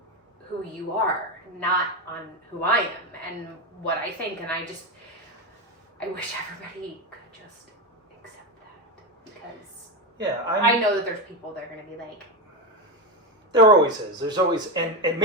who you are, not on who I am and what I think. And I wish everybody could just accept that, because I know that there's people that are going to be like, there always is. There's always, and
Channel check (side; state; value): both; normal; correlation 0.14